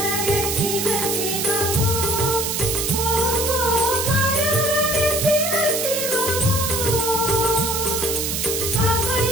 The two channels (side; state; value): right; noise; hiss, 1 dB below the sound